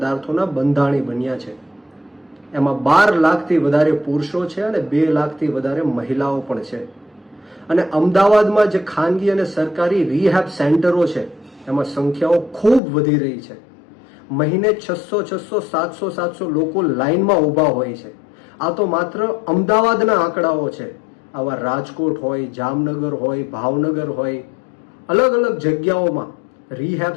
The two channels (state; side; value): drops out; right; at 12.8 s